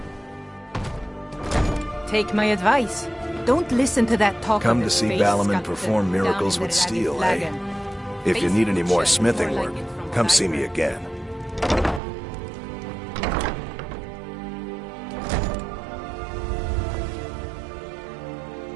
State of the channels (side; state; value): left; drops out; at 12.0 s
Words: Take my advice. Don't listen to that talk. Come to see Balaman perform miracles with steel, eh? If you need any more smithing work, come see me again.